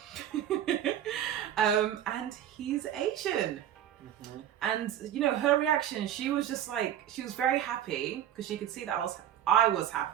And he's Asian. And her reaction, she was just like, she was very happy because she could see that I was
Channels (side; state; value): left; quieter; 10.9 dB